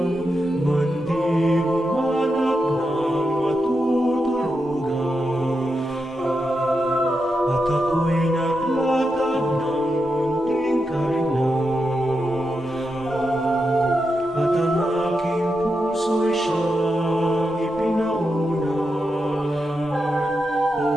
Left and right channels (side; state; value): both; normal; correlation 0.87